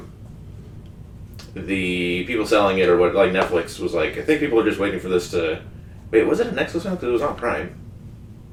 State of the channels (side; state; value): both; identical; correlation 1.00